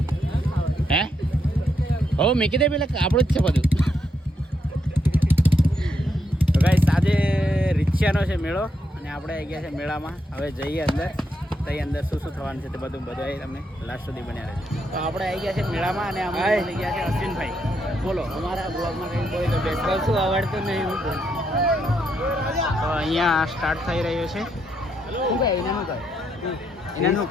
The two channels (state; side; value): normal; both; correlation 0.79